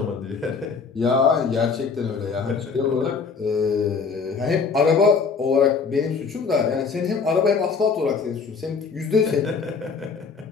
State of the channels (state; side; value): quieter; right; 5.3 dB